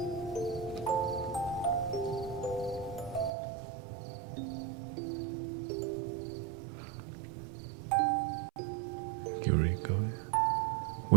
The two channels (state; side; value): drops out; left; at 3.3 s